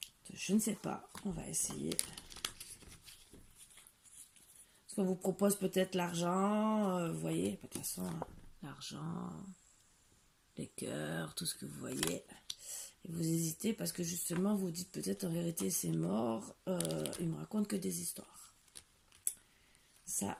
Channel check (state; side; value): identical; both; correlation 1.00